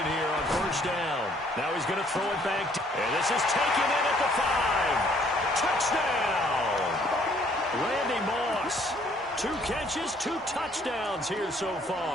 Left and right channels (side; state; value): both; normal; correlation 0.63